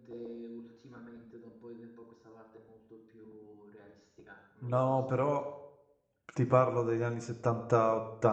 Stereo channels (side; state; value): both; identical; correlation 1.00